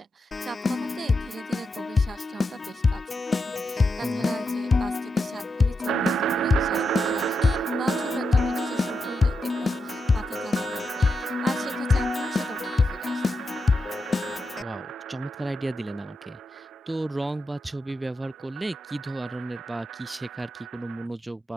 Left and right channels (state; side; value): normal; both; correlation 0.86